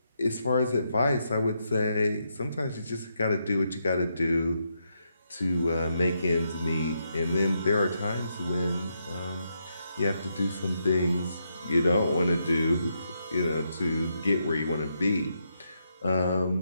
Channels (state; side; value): inverted; both; correlation -0.81